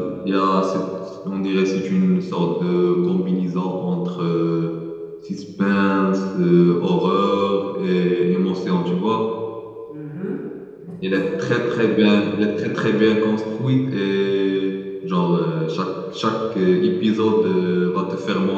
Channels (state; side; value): identical; both; correlation 1.00